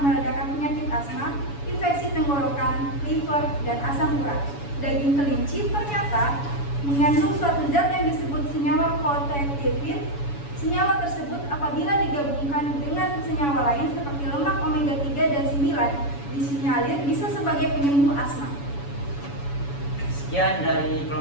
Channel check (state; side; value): late; right; 7.1 ms